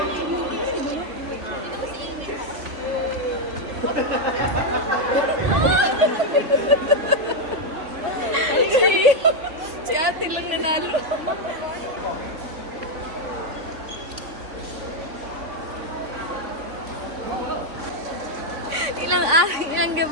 Si ate lang nanalo. Ilang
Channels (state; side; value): late; left; 3.6 ms